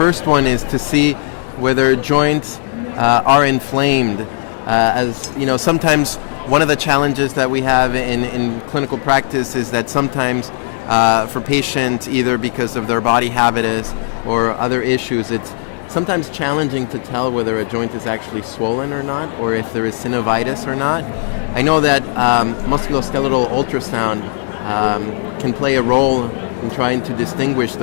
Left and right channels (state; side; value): silent; right; digital silence